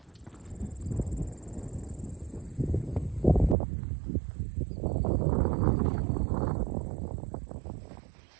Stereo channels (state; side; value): drops out; left; at 3.6 s